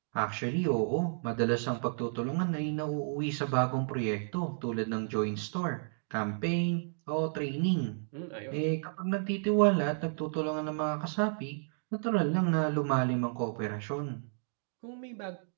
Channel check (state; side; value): silent; left; digital silence